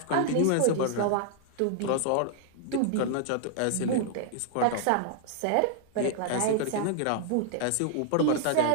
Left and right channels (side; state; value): both; different; correlation -0.01